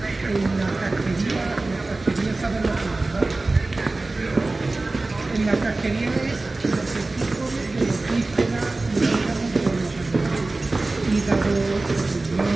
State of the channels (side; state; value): left; quieter; 3.2 dB